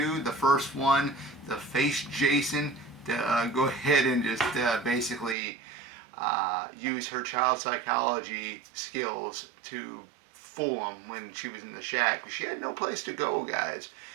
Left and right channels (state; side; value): drops out; left; at 5.4 s